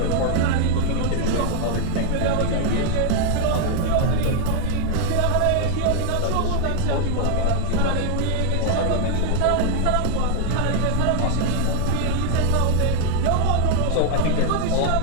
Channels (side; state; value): both; different; correlation 0.00